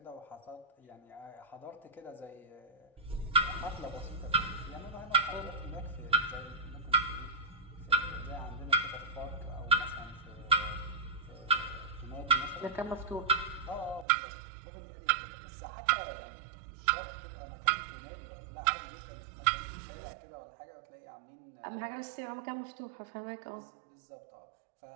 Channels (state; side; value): drops out; left; at 14.1 s